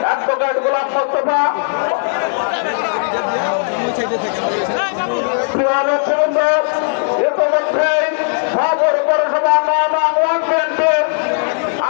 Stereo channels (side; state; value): right; silent; digital silence